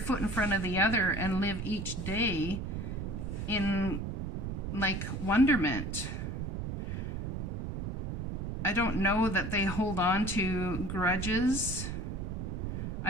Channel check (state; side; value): noise; right; rumble, 4 dB below the sound